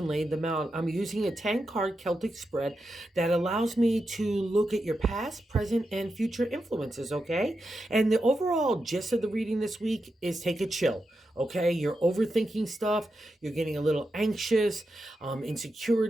laid them out. I'm using a 10-card Celtic spread that allows me to look at your past, present, and future influences, okay? And the overall gist of the reading this week is take a chill, okay? You're overthinking stuff. You're getting a little anxious.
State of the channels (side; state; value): both; normal; correlation 0.88